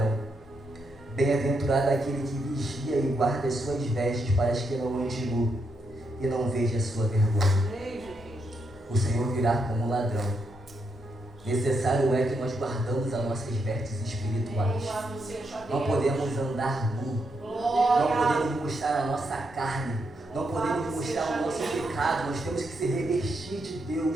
Bem-aventurado aquele que vigia e guarda as suas vestes, para que não ande nu e não veja a sua vergonha. O Senhor virá como ladrão. Necessário é que nós guardamos as nossas vestes espirituais. Não podemos andar nu. Não podemos mostrar a nossa carne. Não podemos mostrar o nosso pecado. Nós temos que se revestir de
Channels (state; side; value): normal; both; correlation 0.80